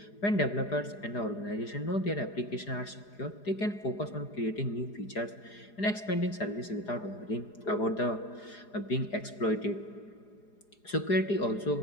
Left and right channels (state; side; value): late; right; 4.9 ms